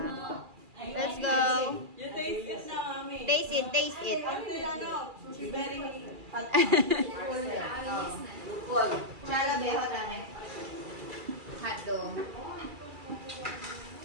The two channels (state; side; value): late; left; 2.3 ms